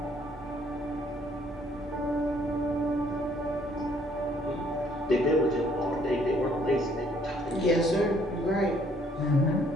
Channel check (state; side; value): normal; both; correlation 0.64